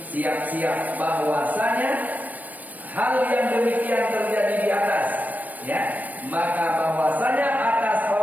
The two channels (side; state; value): left; late; 0.081 ms